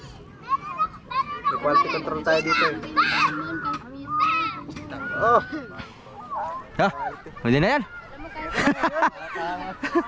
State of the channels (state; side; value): identical; both; correlation 1.00